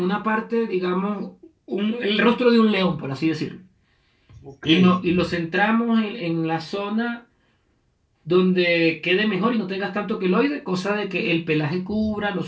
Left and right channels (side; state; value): both; identical; correlation 1.00